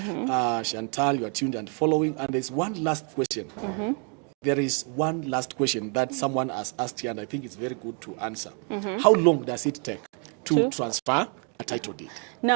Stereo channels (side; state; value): left; quieter; 38.5 dB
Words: Chantal, you are tuned and following. And there's one last question. There is one last question that someone has asked here, and I think it's very good to answer. How long does it take to transfer a title deed?